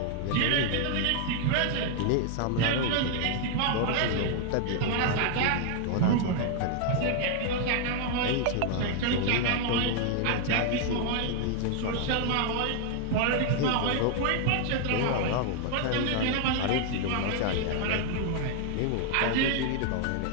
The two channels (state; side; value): different; both; correlation 0.00